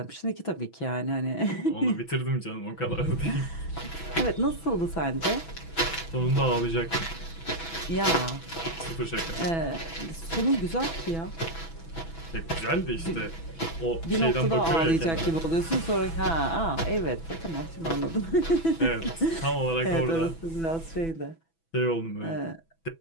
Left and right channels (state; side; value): late; right; 6.1 ms